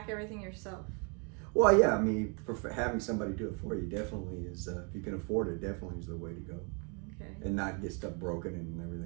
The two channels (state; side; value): quieter; left; 35.4 dB